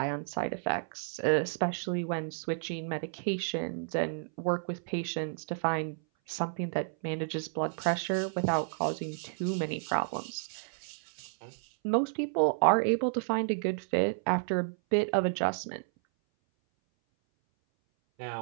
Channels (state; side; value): silent; left; 57 dB below the other